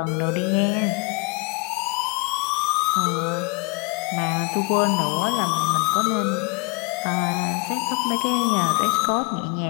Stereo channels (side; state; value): right; quieter; 29.7 dB